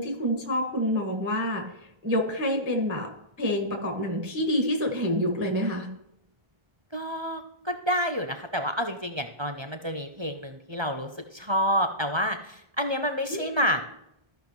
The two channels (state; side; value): late; left; 1.3 ms